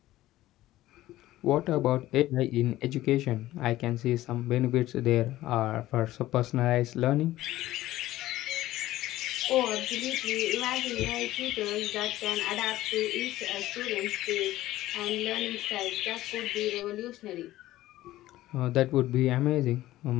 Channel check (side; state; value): right; quieter; 15.6 dB